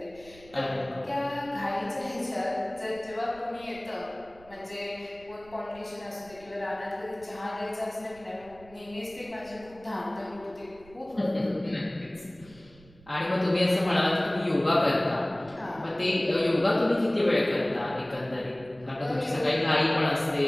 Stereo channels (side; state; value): right; noise; rumble, 24 dB below the sound